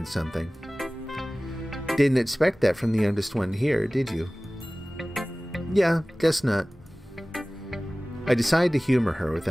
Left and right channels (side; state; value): both; normal; correlation 0.98